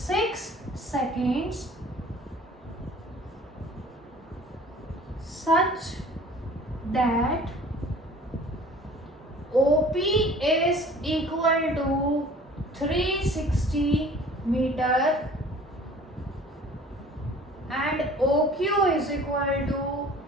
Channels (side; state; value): both; normal; correlation 0.48